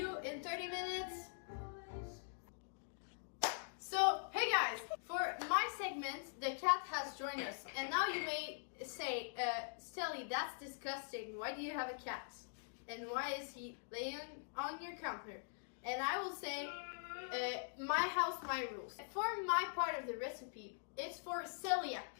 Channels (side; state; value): right; silent; digital silence